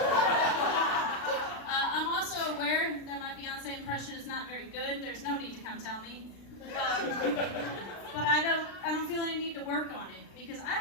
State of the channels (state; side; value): late; right; 36 ms